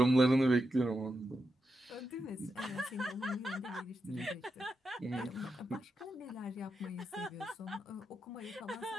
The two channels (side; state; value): both; normal; correlation 0.86